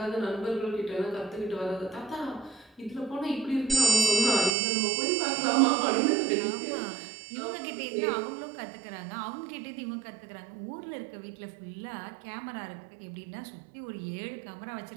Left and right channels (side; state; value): left; drops out; at 4.5 s